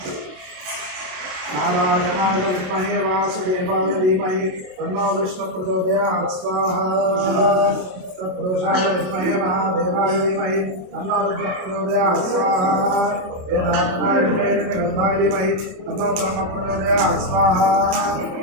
नारायणाय विद्महे वासुदेवाय धीमहि तन्नो विष्णु प्रचोदयात् स्वाहा। तत्पुरुषाय विद्महे महादेवाय धीमहि तन्नो रुद्रः प्रचोदयात् स्वाहा। वेदात्माय धीमहि तन्नो ब्रह्म प्रचोदयात् स्वाहा।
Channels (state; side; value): late; left; 27 ms